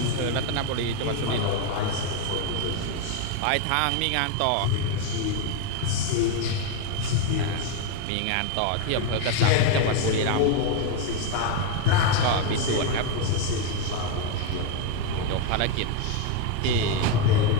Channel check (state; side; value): different; both; correlation 0.02